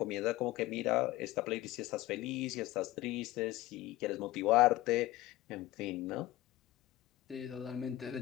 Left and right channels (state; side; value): quieter; right; 16.7 dB